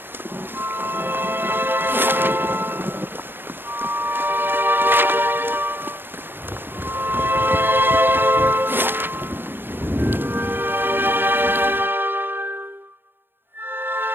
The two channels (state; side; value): late; left; 0.10 ms